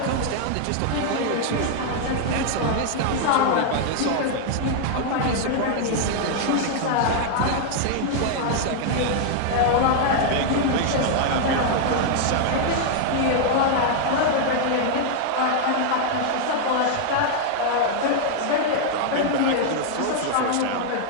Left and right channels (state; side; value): different; both; correlation 0.00